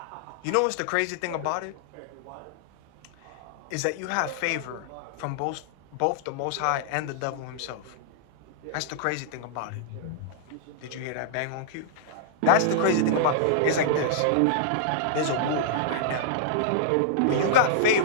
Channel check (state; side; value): different; both; correlation -0.02